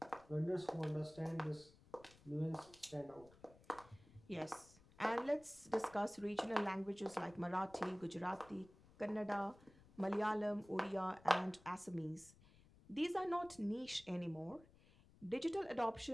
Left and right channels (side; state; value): left; noise; rumble, 24 dB below the sound